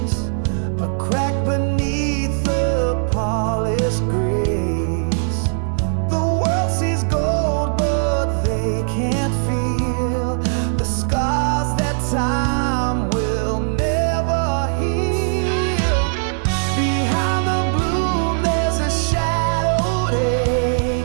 a crack beneath the polished grace. The world sees gold, but they can't feel the scars that time will never heal. Behind the bloom there's a shadowed ache,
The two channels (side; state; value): left; silent; digital silence